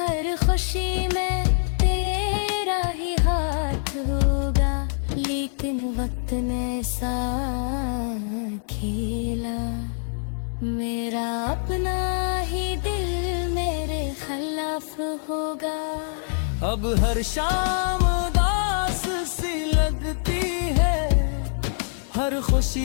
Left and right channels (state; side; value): silent; right; digital silence